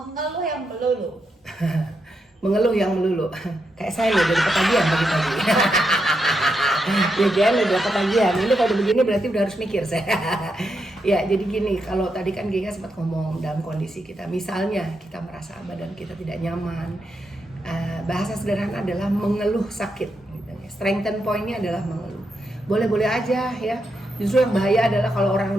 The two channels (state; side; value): normal; both; correlation 0.83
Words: yang melulu. Mengeluh yang melulu. Kayak saya nih dari ketagihan pagi-pagi. Ya kan udah ketagihan. Ini kalau begini berarti udah harus mikir saya. Ya, jadi gini, kalau tadi kan Giga sempat ngomong dalam kondisi kita, misalnya kita merasa badan kita tidak nyaman. Bahasa sederhana adalah mengeluh sakit. Gitu. Strengthen point-nya adalah mengeluh. Boleh-boleh aja ya. Justru yang bahaya adalah kalau orang